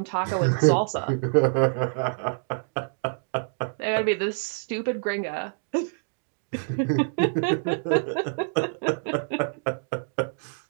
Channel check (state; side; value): silent; left; digital silence